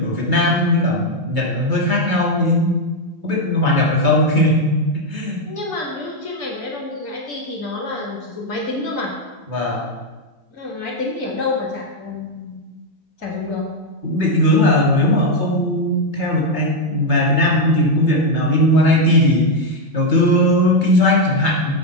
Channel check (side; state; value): left; late; 2.3 ms